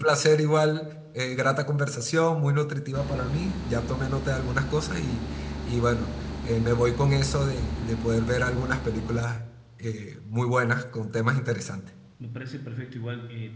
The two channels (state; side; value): identical; both; correlation 1.00